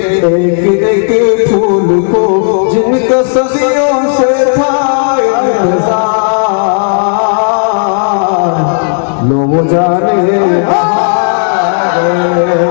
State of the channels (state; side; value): silent; right; 63 dB below the other